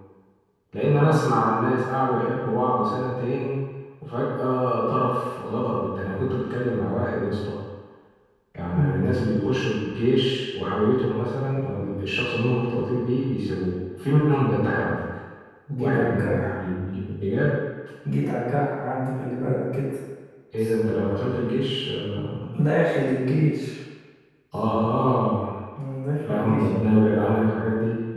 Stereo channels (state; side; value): identical; both; correlation 1.00